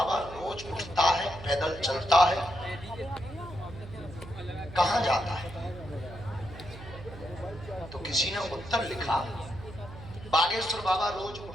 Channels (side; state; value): right; noise; hum, 14 dB below the sound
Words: रोज उठता है, पैदल चलता है, कहां जाता है? तो किसी ने उत्तर लिखा, बागेश्वर बाबा रोज